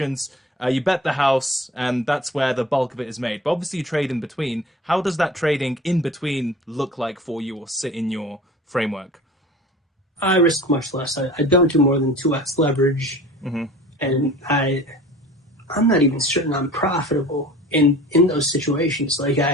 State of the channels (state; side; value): normal; both; correlation 0.42